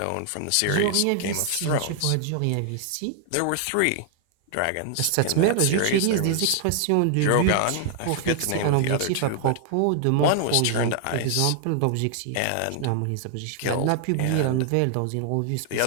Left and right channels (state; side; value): different; both; correlation 0.00